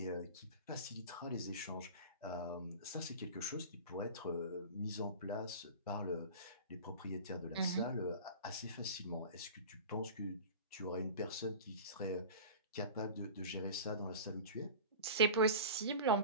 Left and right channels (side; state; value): both; inverted; correlation -0.35